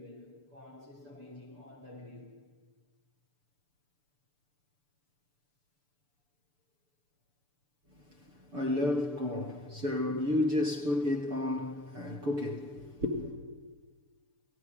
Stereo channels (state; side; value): late; left; 6.9 ms